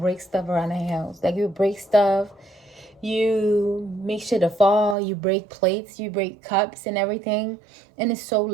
stuff around the house. Like you break stuff, you make shit to fall, you break plates, you break cups and everything. And it's so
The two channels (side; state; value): left; drops out; at 5.0 s